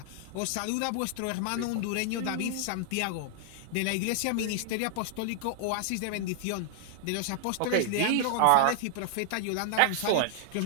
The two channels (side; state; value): both; different; correlation 0.00